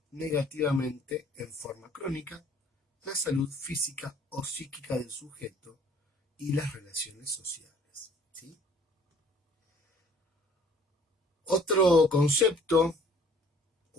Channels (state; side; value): normal; both; correlation 0.56